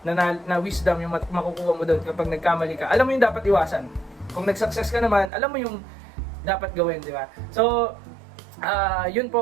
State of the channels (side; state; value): left; drops out; at 5.3 s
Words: na wisdom yung makukuha mo doon kapag nagkamali ka. Alam mo yung dapat iwasan. Kung nag-success ka naman, alam mo yung dapat gawin, di ba? So, yun